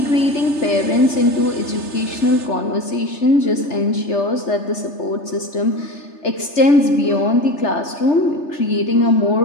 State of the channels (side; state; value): right; late; 3.3 ms